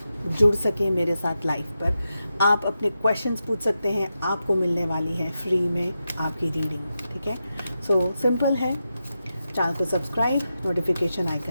जुड़ सकें मेरे साथ लाइव पर। आप अपने क्वेश्चंस पूछ सकते हैं, आपको मिलने वाली है फ्री में आपकी रीडिंग, ठीक है। सो सिंपल है, चैनल को सब्सक्राइब, नोटिफिकेशन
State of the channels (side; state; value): both; inverted; correlation -0.89